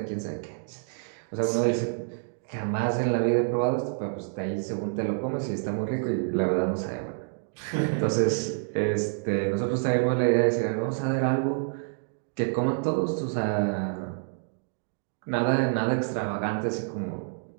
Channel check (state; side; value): silent; left; digital silence